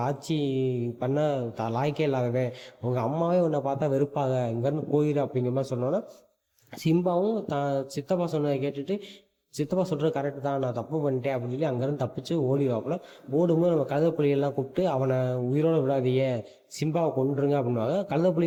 ஆட்சி பண்ண லாய்க்கே இல்லாதவன், உங்கள் அம்மாவே உன்னை பார்த்தா வெறுப்பாக, இங்கேருந்து போயிரு அப்படிங்கிற மாதிரி சொன்னோன்னா சிம்பாவும் சித்தப்பா சொன்னதை கேட்டுட்டு, சித்தப்பா சொல்கிறது கரெக்டு தான், நான் தப்பு பண்ணிட்டேன் அப்படின்னு சொல்லி அங்கேருந்து தப்பிச்சு ஓடிவாப்புல. ஓடும்போது நம்ம கழுதைப்புலிகள்லாம் கூப்பிட்டு, அவனை உயிரோடு விடாதீங்க, சிம்பாவை கொண்டுருங்க அப்படின்வாங்க.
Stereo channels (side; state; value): both; identical; correlation 1.00